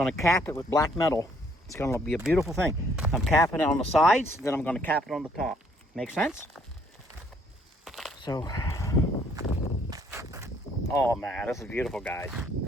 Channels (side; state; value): both; normal; correlation 0.65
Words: to cap it with black metal. It's going to be a beautiful thing. I'm capping it on the sides, then I'm going to cap it on the top. Make sense? So, oh man, this is beautiful, guys.